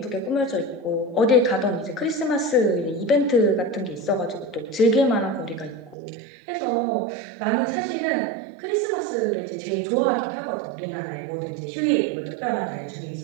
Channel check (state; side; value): drops out; left; at 6.0 s